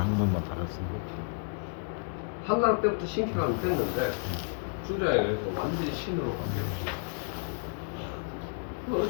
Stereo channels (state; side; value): silent; right; 57 dB below the other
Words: 달았어요. 그렇죠. 한나라 때부터 신기가 됐는데 주자에 의해서 완전히 신으로 바뀌었죠.